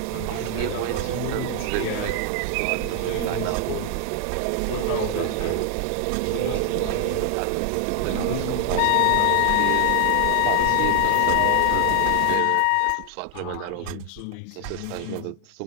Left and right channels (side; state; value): both; different; correlation 0.00